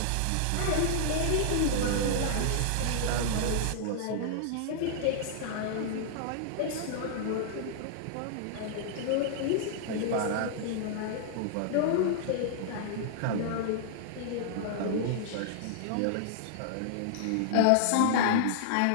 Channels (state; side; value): different; both; correlation -0.01